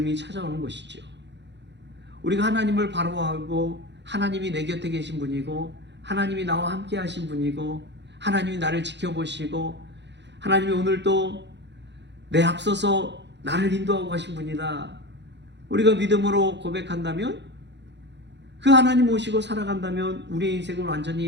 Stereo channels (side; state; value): left; late; 0.51 ms